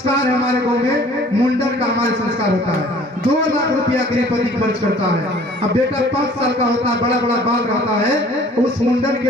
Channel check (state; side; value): normal; both; correlation 0.52